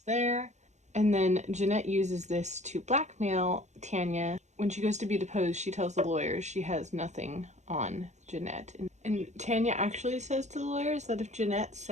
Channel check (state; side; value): late; left; 0.34 ms